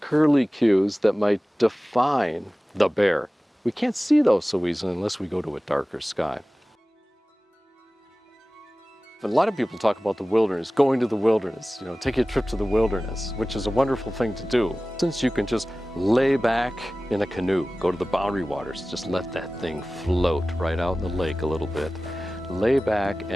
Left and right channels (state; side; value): normal; both; correlation 0.97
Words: curlicues that might define the bear. We can't see those so easily unless we go to a darker sky. A lot of people talk about the wilderness, going to the wilderness, take a trip to the wilderness, which is a wonderful thing to do. Since you can just lay back in a canoe, go to the boundary waters, just let that thing float right out in the lake a little bit. Lay back